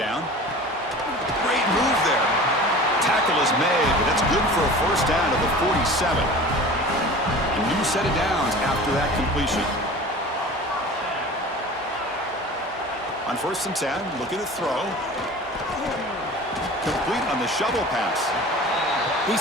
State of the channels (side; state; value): both; normal; correlation 0.39